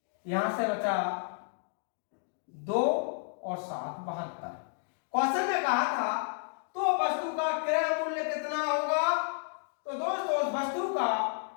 यहां से बचा 2 और 7 72। क्वेश्चन में कहा था तो वस्तु का क्रय मूल्य कितना होगा, तो दोस्तों उस वस्तु का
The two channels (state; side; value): silent; right; digital silence